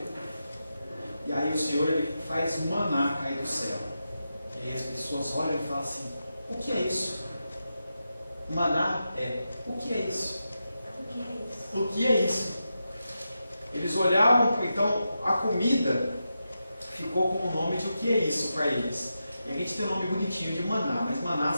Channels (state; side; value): inverted; both; correlation -0.89